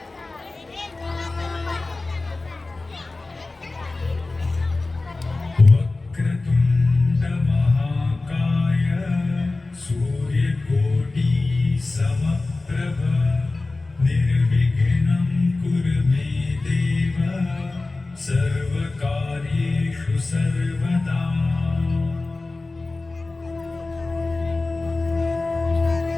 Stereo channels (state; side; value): quieter; right; 3.3 dB